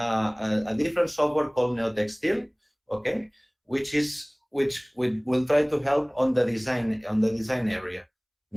different software called Textile, okay, which will try to help on the design area.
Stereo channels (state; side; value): identical; both; correlation 1.00